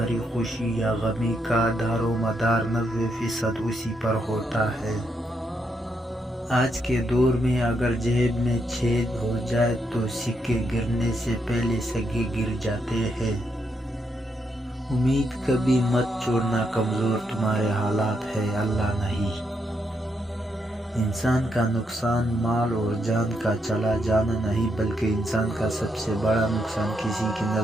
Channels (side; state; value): both; normal; correlation 0.79